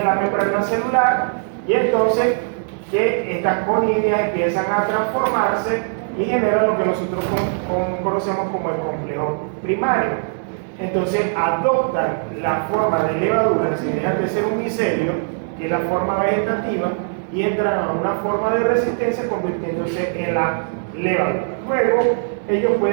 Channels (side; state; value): left; silent; digital silence